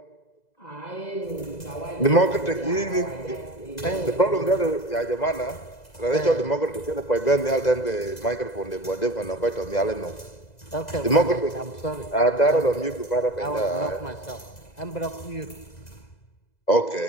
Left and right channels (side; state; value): right; late; 2.0 ms